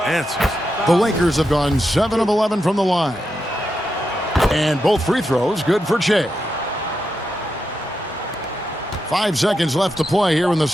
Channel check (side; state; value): both; normal; correlation 0.86